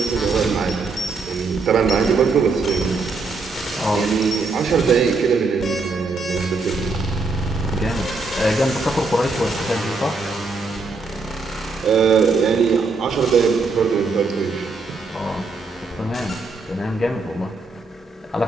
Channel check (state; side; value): quieter; left; 3.9 dB